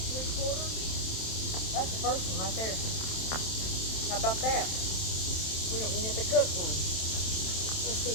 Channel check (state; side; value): late; right; 27 ms